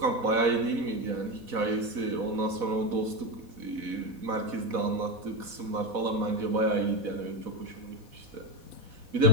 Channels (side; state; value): left; late; 4.1 ms